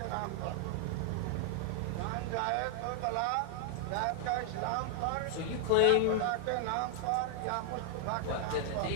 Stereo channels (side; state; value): both; different; correlation -0.01